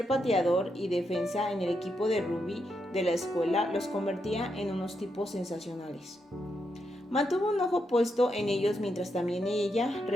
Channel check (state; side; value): normal; both; correlation 0.82